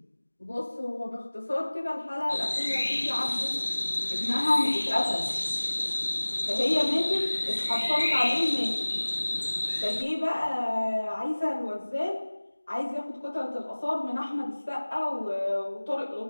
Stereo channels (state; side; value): inverted; both; correlation -1.00